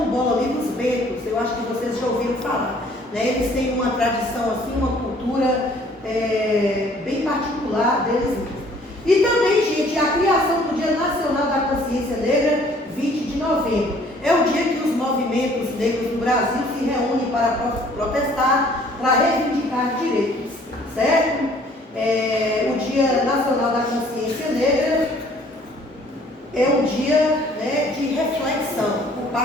ali dos Becos. Eu acho que vocês já ouviram falar, né? Eles têm uma tradição assim, uma cultura bem particular deles mesmos. E também, gente, a criação do Dia Nacional da Consciência Negra, 20 de novembro. É o dia que os movimentos negros do Brasil se reúnem para protestar, para reivindicar direitos, certo? O Dia Nacional da Consciência Negra é um dia, né, de reflexão por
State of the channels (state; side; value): normal; both; correlation 0.57